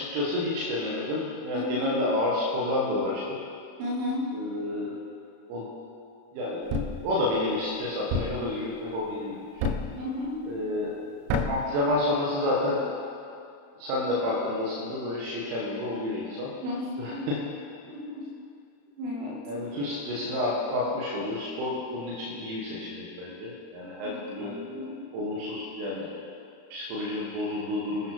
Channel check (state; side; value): late; left; 35 ms